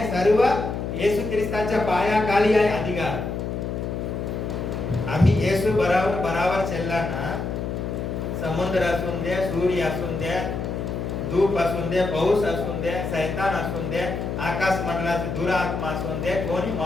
सर्व येशू ख्रिस्ताच्या पायाखाली आहे अधिकार. आम्ही येशू बराबर चालला ना, समुद्र असून दे, सूर्य असून दे, धूप असून दे, पाऊस असून दे, सैतान असून दे, आकाश मंडळाचे दुरात्मा असून दे, कोणी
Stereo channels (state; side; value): noise; left; hum, 4 dB below the sound